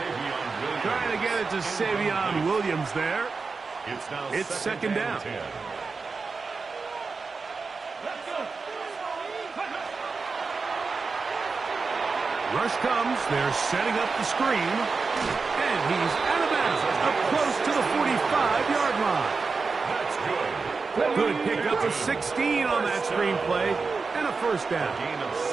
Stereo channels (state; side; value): quieter; left; 4.5 dB